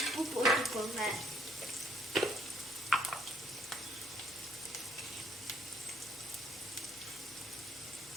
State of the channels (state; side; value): noise; left; hum, 25 dB below the sound